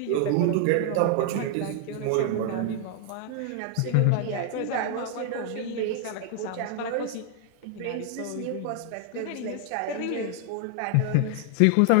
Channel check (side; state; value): both; different; correlation 0.00